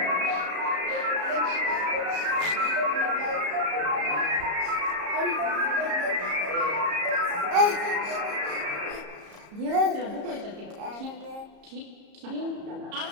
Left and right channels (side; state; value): left; late; 34 ms